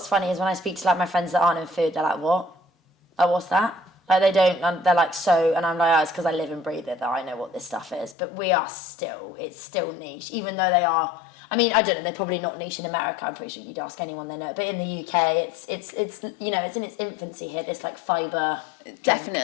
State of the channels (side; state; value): right; drops out; at 8.2 s